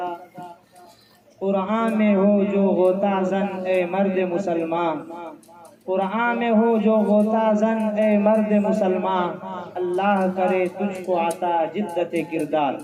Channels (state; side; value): identical; both; correlation 1.00